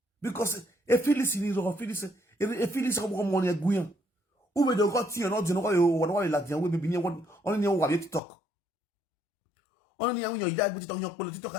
Because a Phyllis is or Phyllis, a Phyllis of one money a guian. Who made the got here not know what like the way be one only know what you talk. Only when you die with your political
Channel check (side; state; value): right; drops out; at 8.2 s